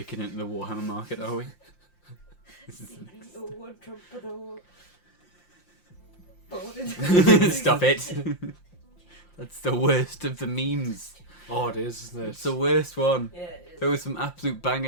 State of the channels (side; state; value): right; late; 5.7 ms